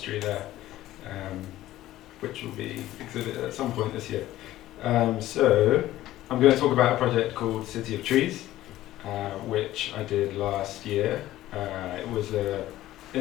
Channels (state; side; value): quieter; right; 14.9 dB